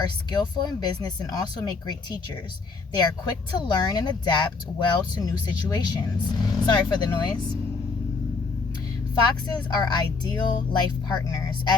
skillful in business and also make great teachers. They are quick to learn and adapt well to new situations. Sorry for the noise. Foxes are ideal life partners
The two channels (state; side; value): quieter; right; 4.4 dB